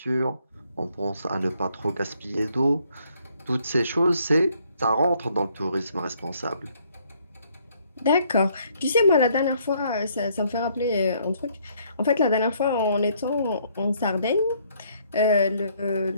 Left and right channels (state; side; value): inverted; both; correlation -0.67